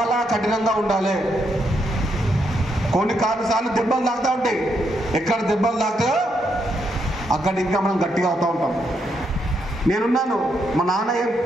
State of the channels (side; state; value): both; normal; correlation 0.78